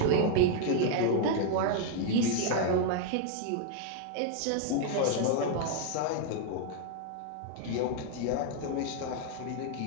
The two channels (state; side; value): different; both; correlation 0.00